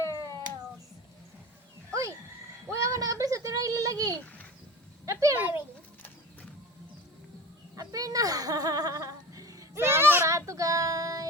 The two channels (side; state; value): both; normal; correlation 0.33